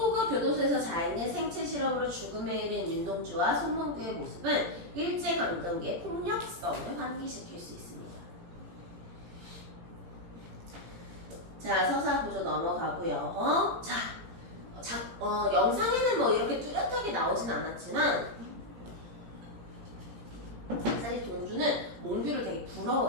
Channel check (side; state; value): left; late; 17 ms